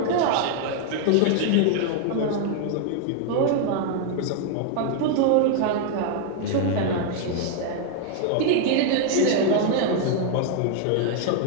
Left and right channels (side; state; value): both; different; correlation 0.00